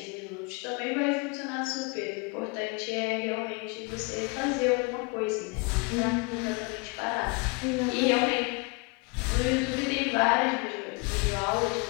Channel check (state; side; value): quieter; right; 31.0 dB